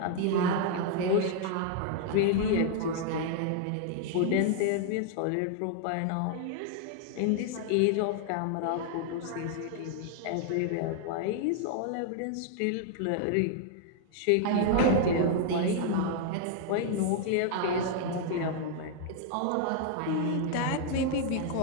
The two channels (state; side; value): different; both; correlation 0.00